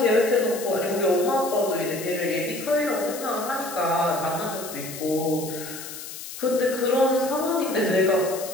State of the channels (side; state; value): left; noise; hiss, 11 dB below the sound